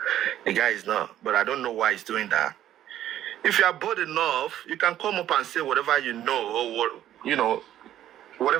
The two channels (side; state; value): left; quieter; 12.0 dB